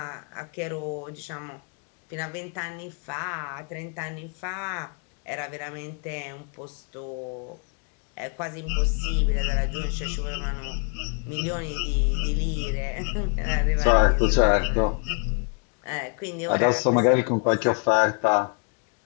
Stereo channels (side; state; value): right; quieter; 39.4 dB